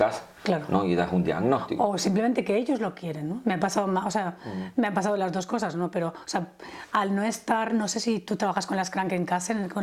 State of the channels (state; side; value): identical; both; correlation 1.00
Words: claro, ¿no? Y das un diagnóstico. O simplemente que ellos lo quieren, ¿no? Me ha pasado, me han pasado las dos cosas, ¿no? Pero, o sea, al no estar, no sé si tú trabajas con las Krankenkassen,